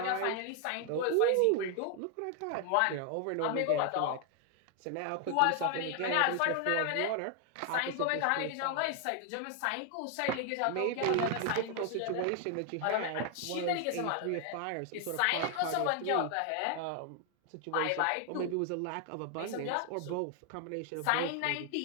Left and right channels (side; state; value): both; different; correlation 0.00